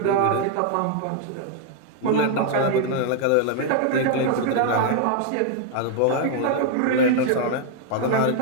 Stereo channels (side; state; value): both; different; correlation 0.00